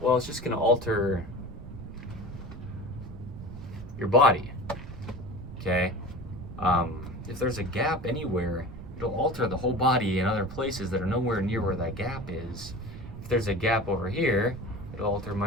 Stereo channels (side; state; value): right; noise; rumble, 12 dB below the sound